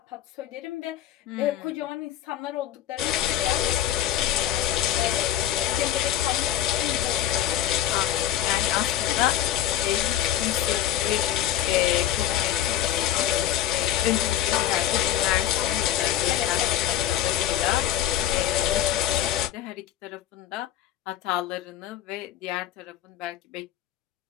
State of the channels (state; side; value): quieter; right; 12.1 dB